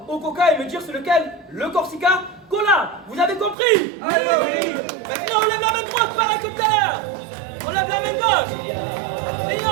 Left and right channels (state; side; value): drops out; left; at 3.6 s